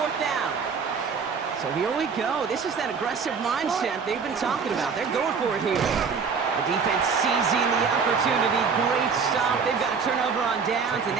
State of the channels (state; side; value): quieter; left; 5.7 dB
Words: down. So here we go. This is that aggressive mindset they've been talking about. They're going for it here. The defense seizing the opportunity. Great stop. They've got a turnover on downs, and